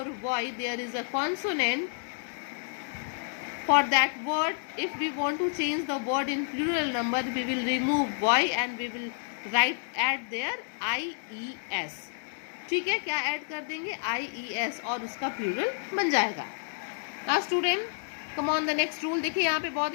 y there is a consonant for that word, if we want to change the word in plural number, we will remove y and we will add there ies. ठीक है, क्या add कर देंगे, ies, और उसका plural बन जाएगा. Now student, come on the next rule. देखिए यहाँ पे बहुत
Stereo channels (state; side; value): silent; right; digital silence